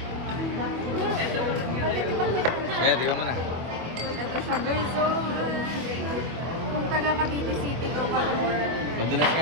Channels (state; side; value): late; left; 24 ms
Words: Tingnan mo na. Ito siya guys. So, kung taga Cavite City ka or... Madalas